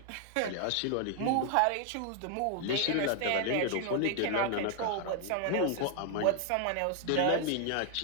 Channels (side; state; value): both; different; correlation 0.00